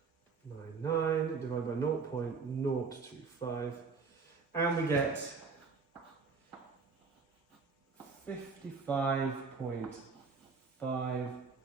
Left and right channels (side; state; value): left; quieter; 4.9 dB